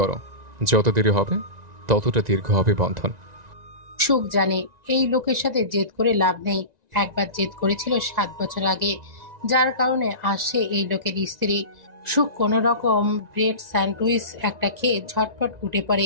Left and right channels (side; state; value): left; late; 1.9 ms